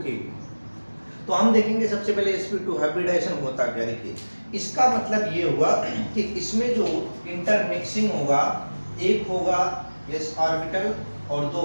की। तो हम देखेंगे सबसे पहले sp2 हाइब्रिडाइजेशन होता क्या। देखिए, इसका मतलब ये हुआ कि इसमें जो इंटरमिक्सिंग होगा, एक होगा s ऑर्बिटल और दो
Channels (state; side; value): inverted; both; correlation -1.00